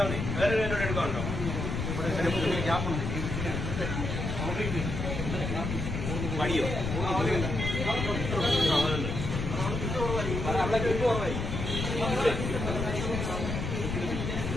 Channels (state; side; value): noise; left; rumble, 3 dB below the sound